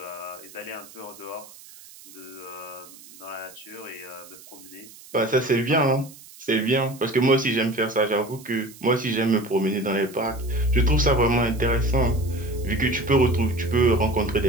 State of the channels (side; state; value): right; noise; hiss, 20 dB below the sound